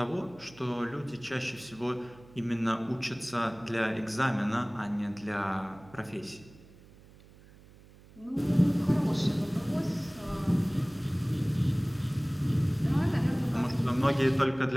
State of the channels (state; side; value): noise; right; hum, 23 dB below the sound